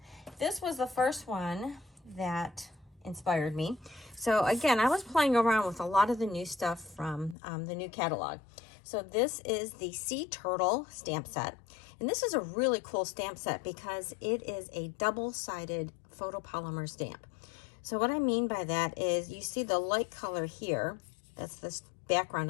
This was the first one that inspired me. So again, I was playing around with a lot of the new stuff from the new catalog. So this is the Sea Turtle stamp set. And this is a really cool stamp set because it is a double-sided photopolymer stamp. So what I mean by that is you see the light color here. That's the background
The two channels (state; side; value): drops out; right; at 7.4 s